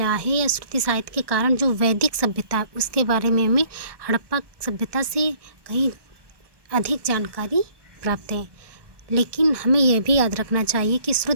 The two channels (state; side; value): late; left; 1.2 ms